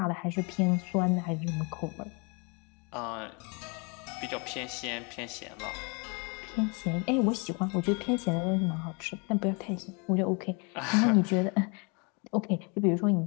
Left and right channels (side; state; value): right; quieter; 32.4 dB